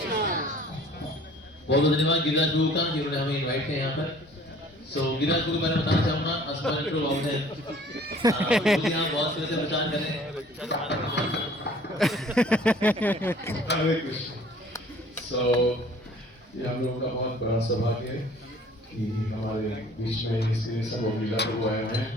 बहुत बहुत धन्यवाद गिरिराज गुरु का जिन्होंने हमें इनवाइट किया यहाँ पर। सो गिरिराज गुरु मैंने बताना चाहूंगा अस्पताल को आउट है यहाँ बहुत से प्रचार करें। हरे कृष्ण। सो ये हम लोगों का बहुत बड़ा सौभाग्य है कि हमारे बीच में इसलिए सब लीला प्रभु आए हैं।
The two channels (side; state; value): both; normal; correlation 0.52